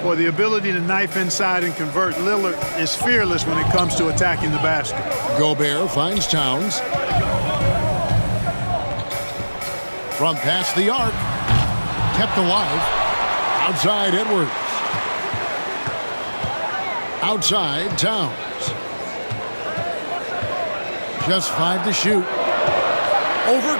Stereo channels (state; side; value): inverted; both; correlation -1.00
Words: Boy, the ability to knife inside and convert. Lillard is fearless when it comes to attacking the basket. Gobert finds Towns. From past the arc. Kept alive. Outside Edwards. Outside Towns. Just 5 to shoot. Over